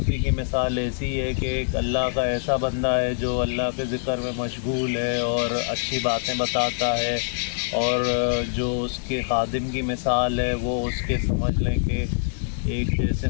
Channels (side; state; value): right; silent; digital silence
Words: کی مثال ایسی ہے کہ ایک اللہ کا ایسا بندہ ہے جو اللہ کے ذکر میں مشغول ہے اور اچھی باتیں بتاتا ہے، اور جو اس کے خادم کی مثال ہے وہ اس کے سمجھ لیں کہ ایک جیسے